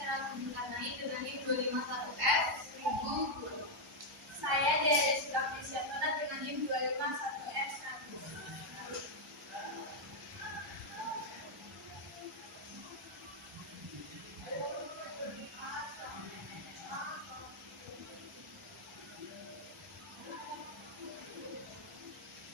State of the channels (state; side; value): normal; both; correlation -0.01